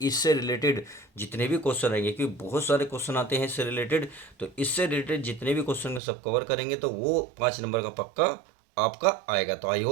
इससे रिलेटेड जितने भी क्वेश्चन आएंगे, क्योंकि बहुत सारे क्वेश्चन आते हैं इससे रिलेटेड, तो इससे रिलेटेड जितने भी क्वेश्चन का सब कवर करेंगे तो वो 5 नंबर का पक्का आपका आएगा। तो आई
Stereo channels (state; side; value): drops out; left; at 6.0 s